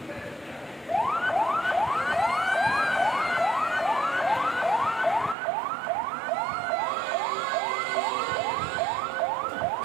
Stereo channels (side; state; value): left; drops out; at 5.4 s